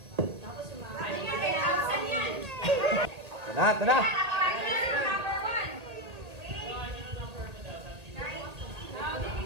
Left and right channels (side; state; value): left; late; 1.7 ms